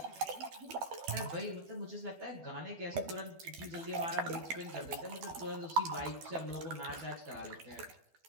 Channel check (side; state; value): left; late; 12 ms